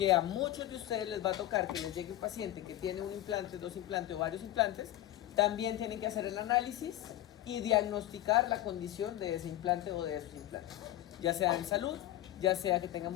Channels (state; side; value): quieter; right; 14.0 dB